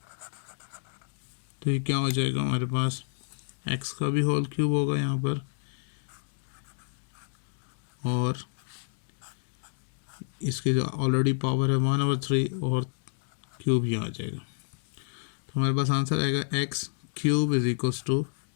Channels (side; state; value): right; silent; digital silence